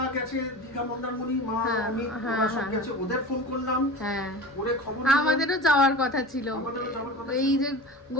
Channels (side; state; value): both; normal; correlation 0.32